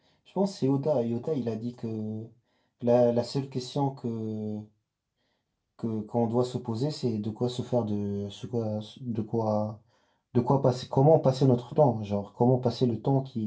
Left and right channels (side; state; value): both; identical; correlation 1.00